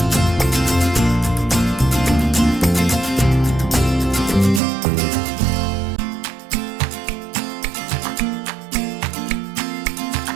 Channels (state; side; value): drops out; left; at 4.6 s